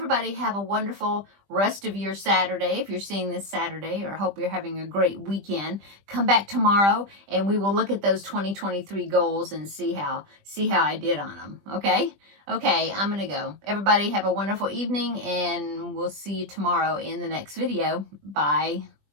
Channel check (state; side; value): late; left; 20 ms